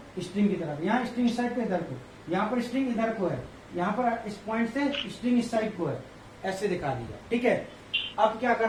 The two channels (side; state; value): both; identical; correlation 1.00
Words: स्ट्रिंग की तरफ, यहाँ स्ट्रिंग इस साइड को इधर को, यहाँ पर स्ट्रिंग इधर को है, यहाँ पर इस पॉइंट से स्ट्रिंग इस साइड को है, ऐसे दिखा दिया, ठीक है। अब क्या